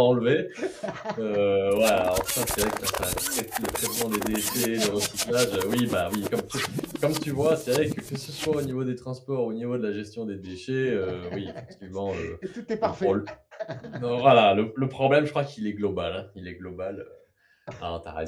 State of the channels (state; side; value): identical; both; correlation 1.00